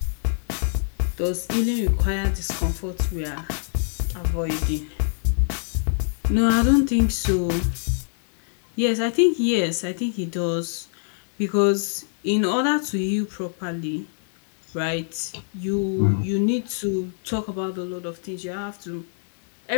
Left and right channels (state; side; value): silent; right; digital silence